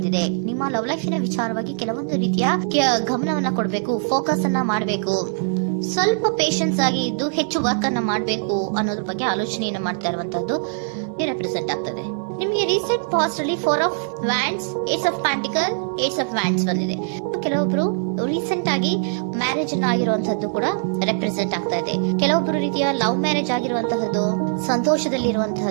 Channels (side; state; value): left; silent; 59 dB below the other